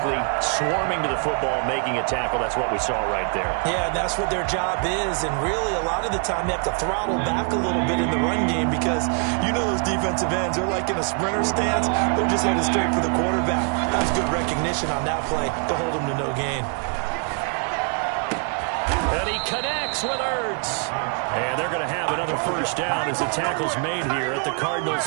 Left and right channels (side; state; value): left; quieter; 39.4 dB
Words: swarming to the football, making a tackle. That's what we saw right there. Yeah, that's what their job is. And really, a lot of the time, they have to throttle back a little bit in the run game because you know those defensive ends, they're like in a sprinter stance. They're just headed straight for the quarterback. That was good recognition on that play to hold him to no gain. And he connects with Ertz. And they're going to have another 1st down as the tackle's made here at the